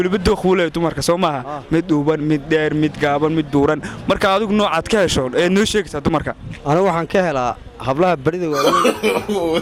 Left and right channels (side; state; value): both; identical; correlation 1.00